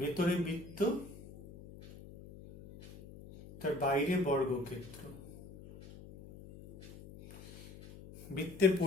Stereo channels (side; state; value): left; noise; hum, 17 dB below the sound